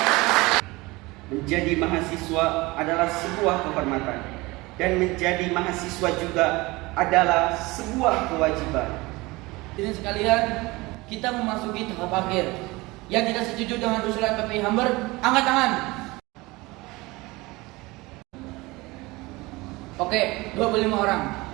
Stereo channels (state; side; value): quieter; left; 22.3 dB